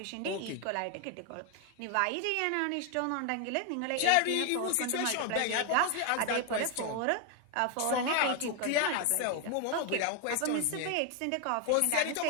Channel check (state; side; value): different; both; correlation 0.01